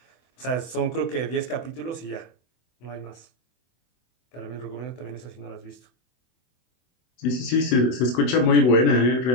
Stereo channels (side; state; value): right; late; 24 ms